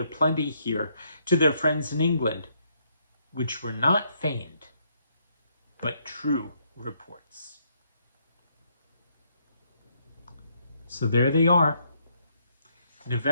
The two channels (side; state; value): both; inverted; correlation -0.73